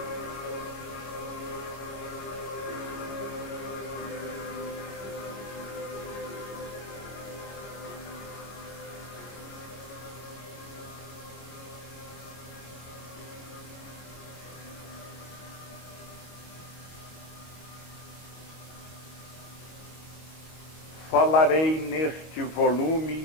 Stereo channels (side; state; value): right; late; 25 ms